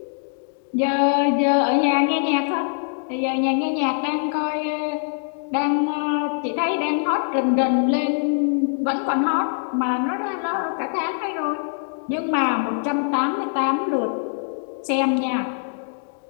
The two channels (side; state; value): right; silent; 63 dB below the other